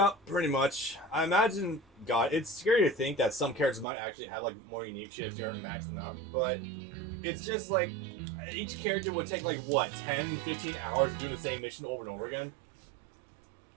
pretty much. I imagine, God, it's scary to think that some characters might actually have like more unique shit if you aren't maxing them out. But it's just like each character would take like what, 10, 15 hours doing the same mission over and over again.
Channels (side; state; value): left; drops out; at 3.9 s